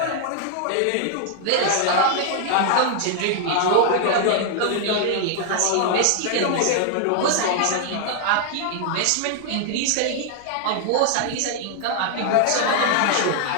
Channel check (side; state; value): both; different; correlation 0.00